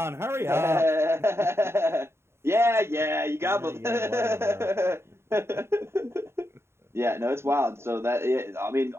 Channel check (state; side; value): late; left; 0.12 ms